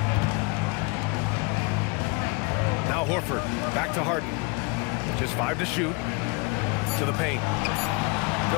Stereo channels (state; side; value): quieter; right; 29.6 dB